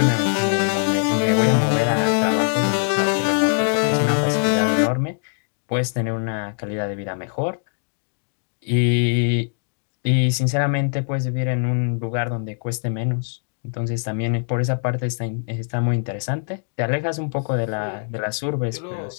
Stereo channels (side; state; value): right; silent; digital silence